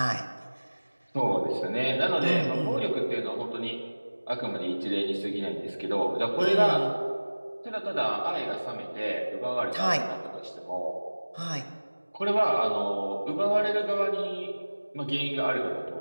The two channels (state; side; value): inverted; both; correlation -1.00